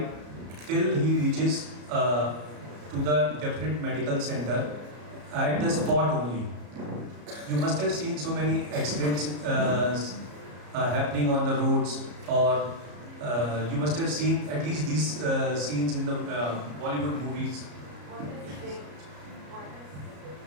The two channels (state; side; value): late; left; 34 ms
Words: till he reaches to the definite medical center at the spot only. You must have seen so many accidents happening on the roads, or you must have seen at least these scenes in the Bollywood movies.